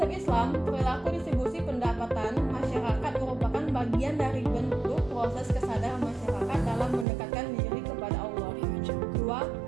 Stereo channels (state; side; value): drops out; left; at 7.1 s